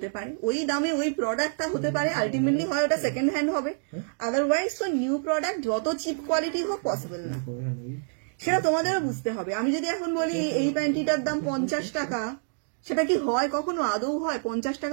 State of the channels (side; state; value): left; silent; digital silence